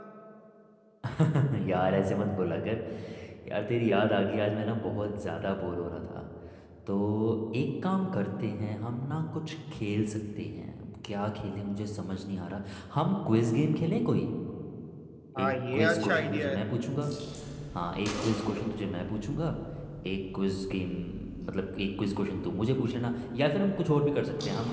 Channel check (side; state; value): both; identical; correlation 1.00